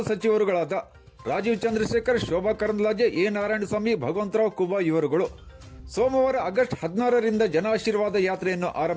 ಸಚಿವರುಗಳಾದ ರಾಜೀವ್ ಚಂದ್ರಶೇಖರ್, ಶೋಭಾ ಕರಂದ್ಲಾಜೆ, ಎ ನಾರಾಯಣಸ್ವಾಮಿ, ಭಗವಂತರಾವ್ ಕುಬಾ ಇವರುಗಳು ಸೋಮವಾರ ಆಗಸ್ಟ್ 16ರಿಂದ ಜನಾಶೀರ್ವಾದ ಯಾತ್ರೆಯನ್ನು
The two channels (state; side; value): identical; both; correlation 1.00